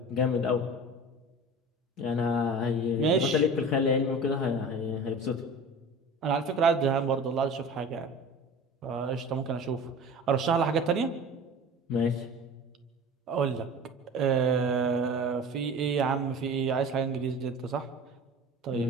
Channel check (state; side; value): normal; both; correlation 0.37